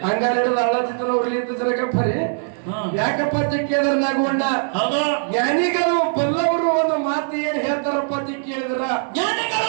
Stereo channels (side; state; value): left; silent; digital silence